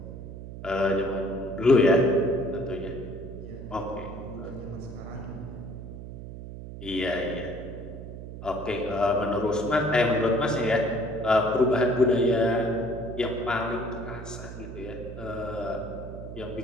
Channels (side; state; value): right; noise; hum, 11 dB below the sound